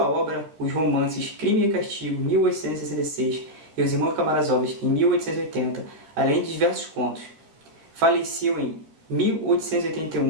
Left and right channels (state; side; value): late; left; 14 ms